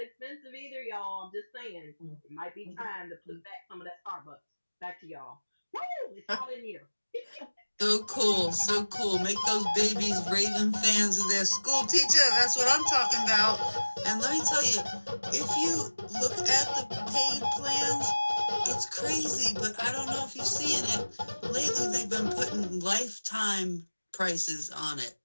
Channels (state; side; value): inverted; both; correlation -1.00